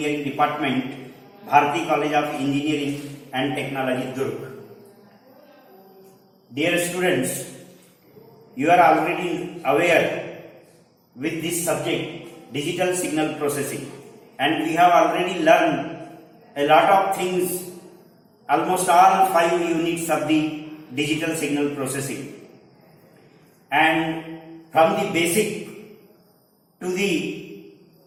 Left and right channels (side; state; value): both; identical; correlation 1.00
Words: Department, Bharati College of Engineering and Technology, Durg. Dear students, you are already aware with this subject, digital signal processing, and we have already learned a lot of things, almost all 5 units of the digital signal processing. And from the basic to the